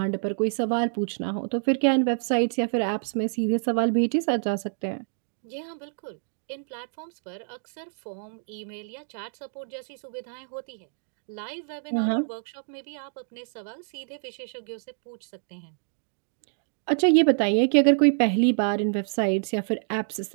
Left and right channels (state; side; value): silent; left; digital silence